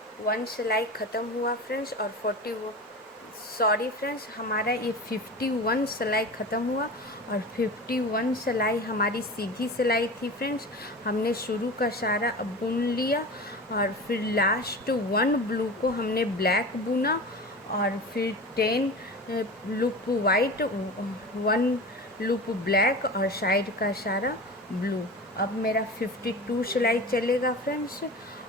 सिलाई ख़त्म हुआ फ्रेंड्स, और हमारा ये 51 सिलाई ख़त्म हुआ और 51 सिलाई हमारी सीधी सिलाई थी फ्रेंड्स। हमने शुरू का सारा बुन लिया और फिर लास्ट 1 ब्लू को हमने ब्लैक बुना और फिर 10 लूप वाइट, 1 लूप ब्लैक और साइड का सारा ब्लू। अब मेरा 52 सिलाई चलेगा फ्रेंड्स,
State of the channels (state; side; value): normal; both; correlation 0.32